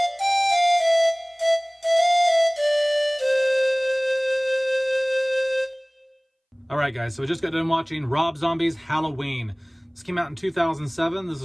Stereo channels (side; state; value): both; identical; correlation 1.00